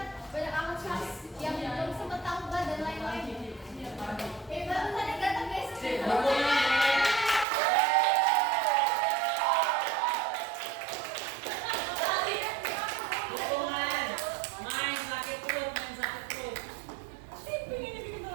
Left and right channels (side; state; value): left; drops out; at 7.5 s